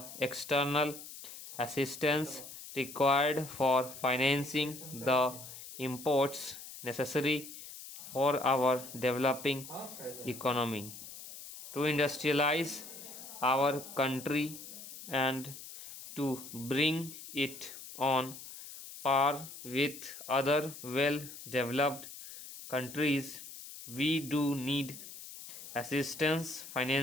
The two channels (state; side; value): noise; left; hiss, 13 dB below the sound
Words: external assistance required for financing the imports necessary for our developing economy, to industrialize our country and to bring it on par with other well developed countries. We do need assistance,